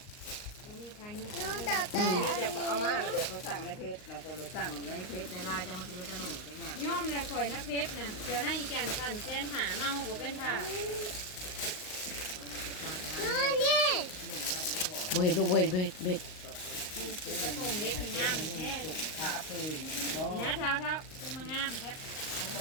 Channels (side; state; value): right; late; 38 ms